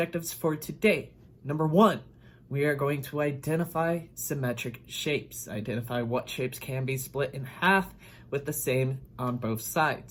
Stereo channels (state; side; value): identical; both; correlation 1.00